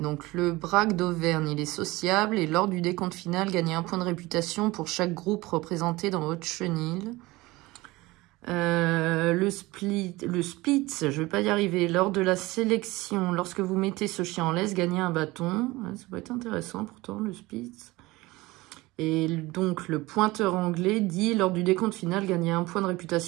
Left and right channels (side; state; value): left; quieter; 20.7 dB